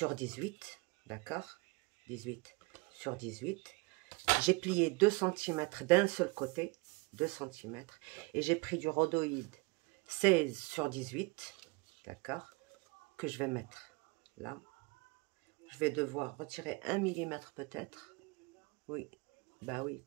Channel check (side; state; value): left; quieter; 27.1 dB